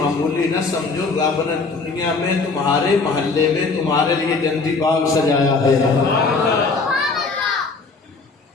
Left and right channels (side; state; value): right; quieter; 4.1 dB